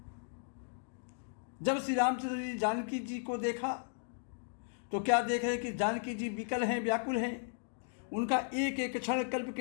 जब श्री रामचंद्र जी जानकी जी को देखा तो क्या देख रहे कि जानकी जी विकल हैं, व्याकुल हैं। उनका एक एक क्षण कल्प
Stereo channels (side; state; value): right; silent; digital silence